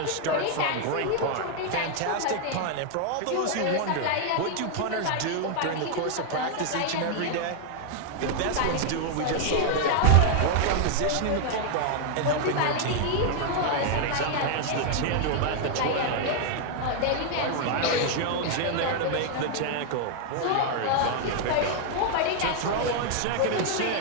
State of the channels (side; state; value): both; different; correlation 0.00